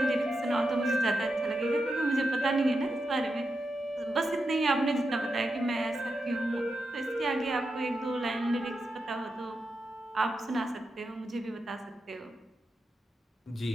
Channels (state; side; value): normal; both; correlation 0.87